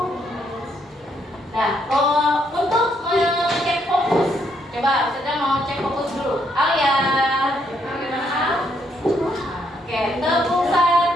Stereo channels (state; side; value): normal; both; correlation 0.73